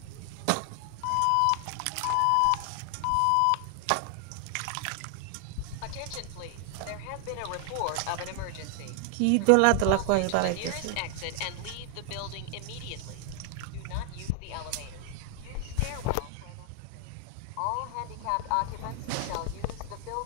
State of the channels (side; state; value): both; different; correlation 0.00